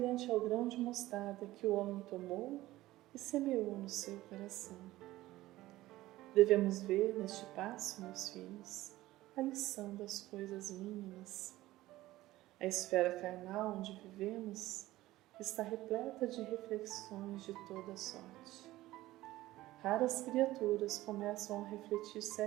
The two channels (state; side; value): quieter; left; 16.7 dB